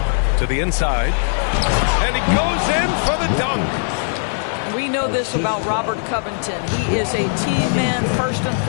To the inside. And he goes in for the dunk. We know this about Robert Covington. He is a team man first and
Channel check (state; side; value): silent; right; 57 dB below the other